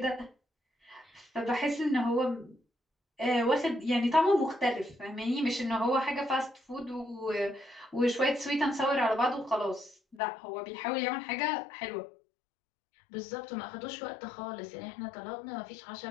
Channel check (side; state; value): right; drops out; at 10.2 s